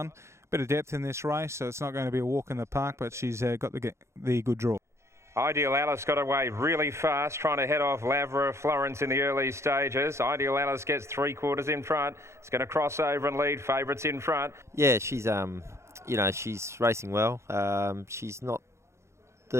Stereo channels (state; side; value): late; left; 0.13 ms